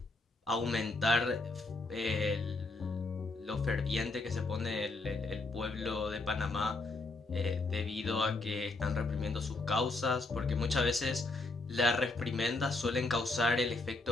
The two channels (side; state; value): right; quieter; 3.3 dB